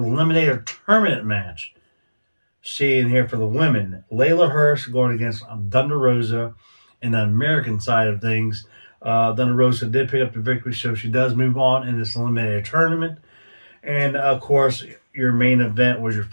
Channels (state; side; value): inverted; both; correlation -1.00